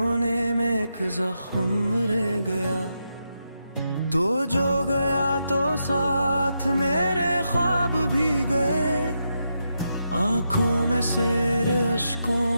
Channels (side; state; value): both; inverted; correlation -0.84